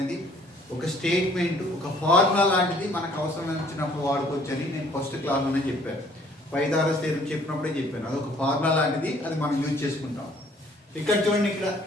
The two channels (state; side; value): normal; both; correlation 0.59